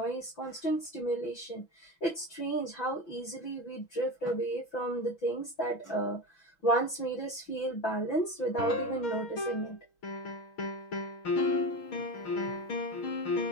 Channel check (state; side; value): late; right; 5.9 ms